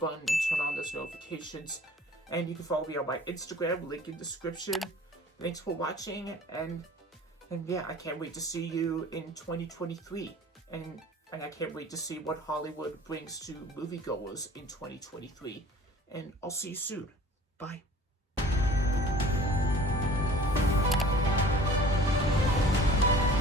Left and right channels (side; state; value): both; normal; correlation 0.48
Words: and turn on those notifications. And you can follow me on my Instagram, link in description. Thanks for watching, and yeah, I can't wait to see you in 2023. And I can't wait to see what Hollywood brings to moviegoers in 2023. And I'll see you soon. Bye.